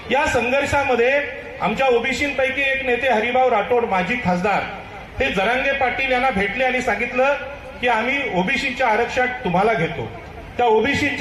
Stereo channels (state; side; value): identical; both; correlation 1.00